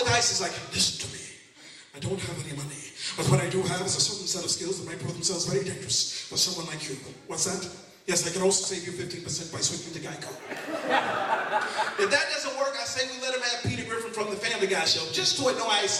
ISIS like, listen to me. I don't have any money. But what I do have is a certain set of skills that may prove themselves very dangerous for someone like you. What's that? Yes, I can also save you 15% by switching to Geico. If that doesn't work, I say we let him have Peter Griffin from the Family Guy show, just to annoy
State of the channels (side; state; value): both; identical; correlation 1.00